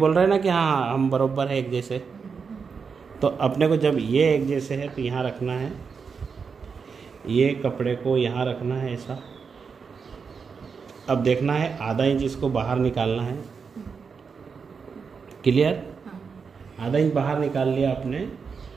रहे हैं ना कि हाँ हम बराबर है एक जैसे, तो अपने को जब ये एक जैसे है तो यहाँ रखना है, ये कपड़े को यहाँ रखना है ऐसा। अब देखना है आधा इंच इसको बाहर निकालना है, क्लियर। आधा इंच बाहर निकाल लिया आपने।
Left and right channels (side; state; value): left; quieter; 5.7 dB